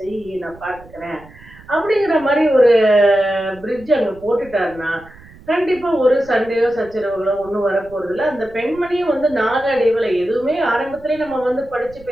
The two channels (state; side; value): noise; right; rumble, 22 dB below the sound